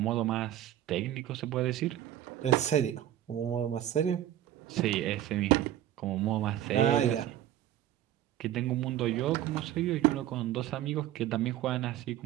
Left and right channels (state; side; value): quieter; left; 12.3 dB